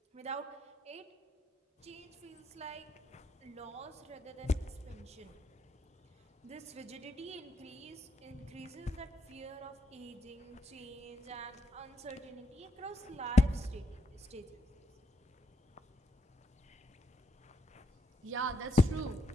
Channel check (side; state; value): both; normal; correlation 0.79